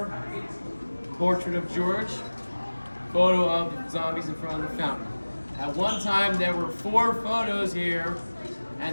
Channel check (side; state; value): both; inverted; correlation -1.00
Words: Portrait of George. Photo of zombies in front of the fountain. At one time, there were 4 photos here,